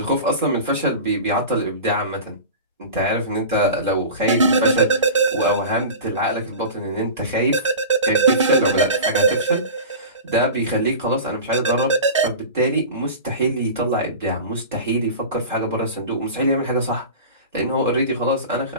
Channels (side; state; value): both; inverted; correlation -0.33